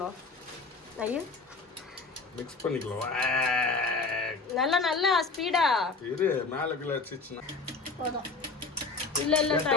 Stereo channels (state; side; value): quieter; right; 4.1 dB